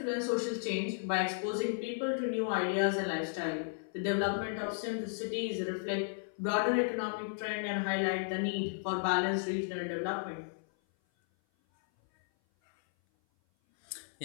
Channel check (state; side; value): silent; right; 55 dB below the other